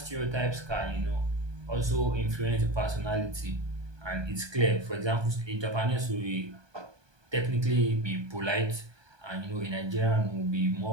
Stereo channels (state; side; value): late; left; 1.2 ms